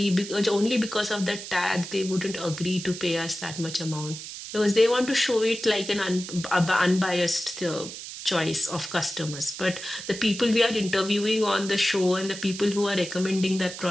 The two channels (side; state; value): right; noise; hiss, 10 dB below the sound